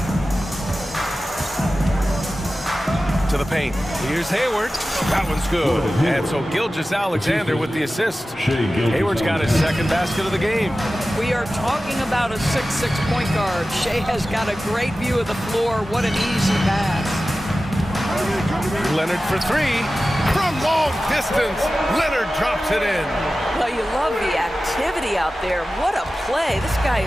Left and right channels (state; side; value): normal; both; correlation 0.95